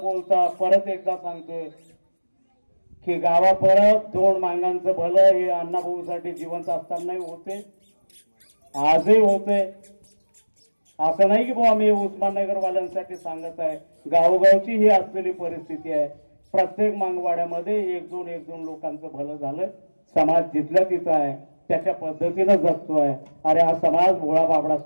बोलता परत एकदा सांगतोय की गावा परत 2 मांगांचं भलं हे अण्णाभाऊसाठी जिवंत असतानाही होते, आजही होते. असं नाही की भाऊ आम्ही उस्माननगरवाल्यांसाठी सांगत आहे. गावोगावची ही असलेली परिस्थिती आहे. प्रत्येक मांगवाड्यामध्ये 1-2 लोकांचं भलं झालं. समाज जिथल्या तिथं आहे, त्याच्या पद्धतीनं जगतोय. अरे हा समाज भोळा बाबडा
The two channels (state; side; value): inverted; both; correlation -1.00